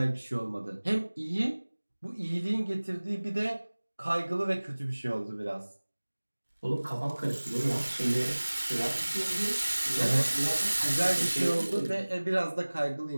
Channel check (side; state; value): both; inverted; correlation -1.00